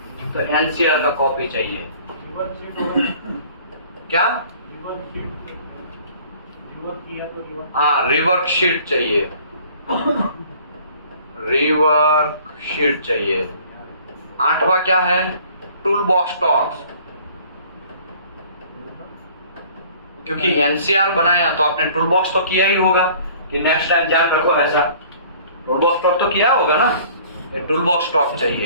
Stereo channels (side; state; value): both; inverted; correlation -0.52